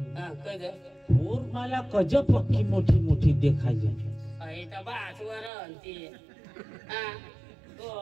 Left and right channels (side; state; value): left; drops out; at 5.5 s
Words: कद और मला कज पक्की मोठी मोठी देखायची तर बासवर ती